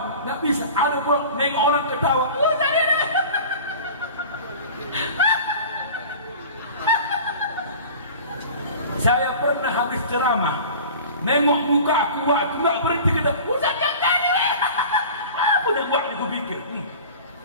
nggak bisa. Ada orang nengok orang ketawa. Saya pernah habis ceramah, nengok muka aku waktu nggak berhenti kita. Ustaz jangan ni. Apa dah buat ni? Aku fikir.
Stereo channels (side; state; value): both; inverted; correlation -0.39